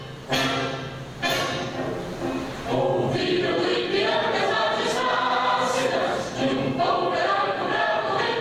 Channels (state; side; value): identical; both; correlation 1.00